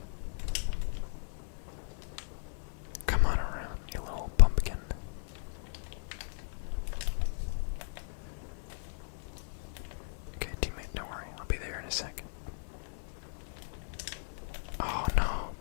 Come on around, you little pumpkin. Okay, teammate, don't worry. I'll be there in a second. Oh no,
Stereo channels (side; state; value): right; silent; 54 dB below the other